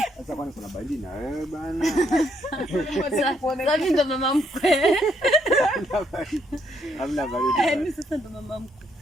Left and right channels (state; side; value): normal; both; correlation 0.72